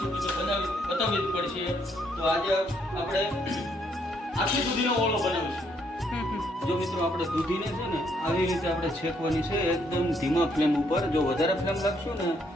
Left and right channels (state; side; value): normal; both; correlation 0.71